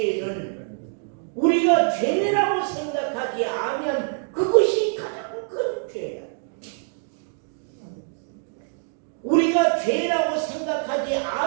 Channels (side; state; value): left; silent; digital silence